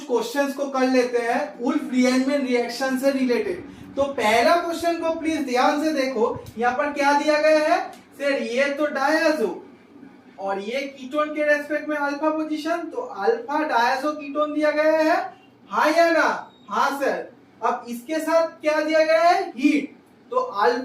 क्वेश्चंस को कर लेते हैं वुल्फ रीअरेंजमेंट रिएक्शन से रिलेटेड। तो पहला क्वेश्चन को प्लीज ध्यान से देखो, यहाँ पर क्या दिया गया है सर, ये तो डायज़ो और ये कीटोन के रेस्पेक्ट में अल्फा पोजीशन, तो अल्फा डायज़ो कीटोन दिया गया है, हाँ या ना? हाँ सर। अब इसके साथ क्या दिया गया है, हीट, तो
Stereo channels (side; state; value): both; identical; correlation 1.00